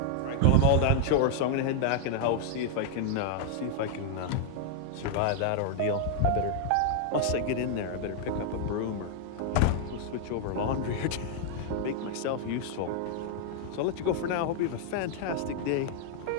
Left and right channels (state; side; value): different; both; correlation 0.00